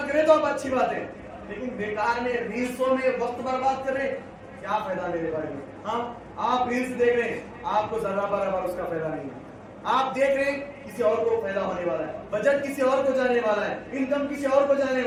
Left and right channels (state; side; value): identical; both; correlation 1.00